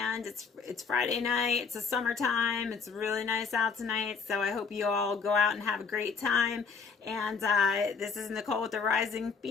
it's Friday night. It's a summertime. It's really nice out tonight. So I hope you all go out and have a great time. And this is Nicole with the Rising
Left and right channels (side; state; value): right; quieter; 5.3 dB